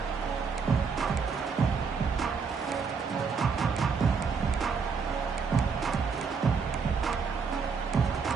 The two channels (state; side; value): quieter; left; 5.5 dB